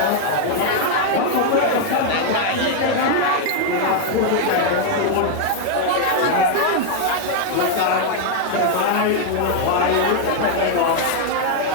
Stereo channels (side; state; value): both; different; correlation 0.00